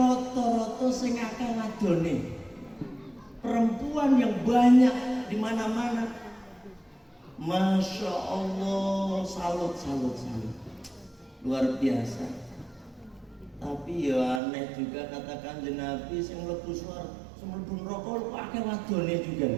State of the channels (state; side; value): drops out; left; at 14.4 s